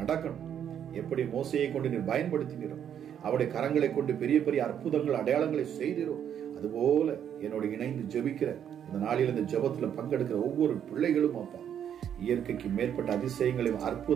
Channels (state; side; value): quieter; left; 9.2 dB